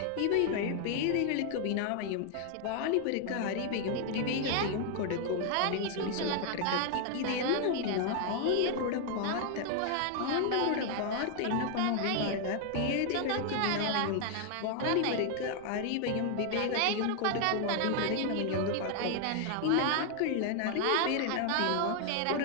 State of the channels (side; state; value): both; different; correlation 0.00